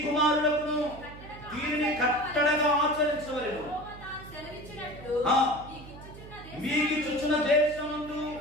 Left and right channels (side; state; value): right; noise; hum, 16 dB below the sound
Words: కుమారులకు దీనిని కట్టడగా ఆచరించవలెను. మీకిచ్చుచున్న దేశమందు